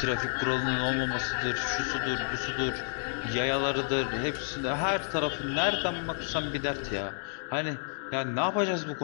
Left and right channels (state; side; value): silent; right; digital silence